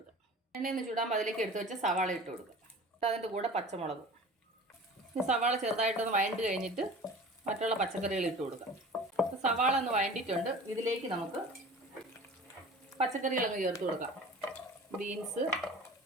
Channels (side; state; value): both; normal; correlation 0.40